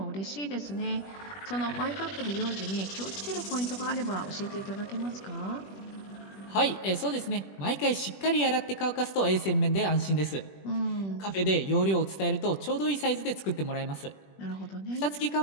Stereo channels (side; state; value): right; late; 21 ms